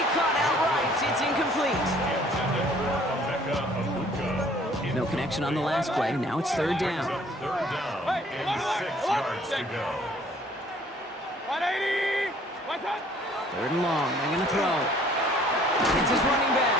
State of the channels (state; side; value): normal; both; correlation 0.57